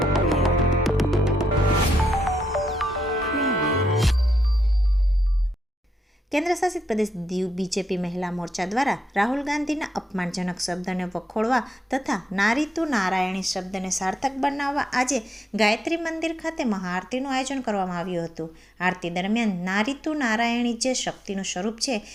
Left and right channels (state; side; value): normal; both; correlation 0.82